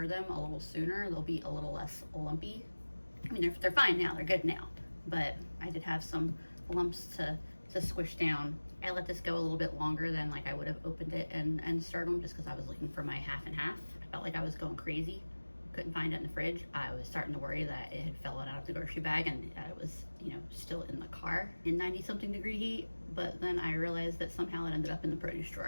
them a little sooner, they'll be a little less lumpy. I mean, they're fine now, they're good now. But I did have some lumps to squish down. I let this go a little bit longer than like I would have opened it and stirred them just because I was looking for my 50/50. I felt like I was going crazy couldn't find it in the fridge. I was starting to worry that it had fallen out of the grocery bag and it was, you know, still in the car in 90-something degree heat. But then I realized that somehow it ended up in the produce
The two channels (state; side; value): inverted; both; correlation -1.00